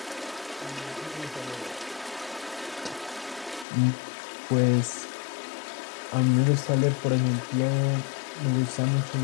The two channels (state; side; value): drops out; right; at 3.7 s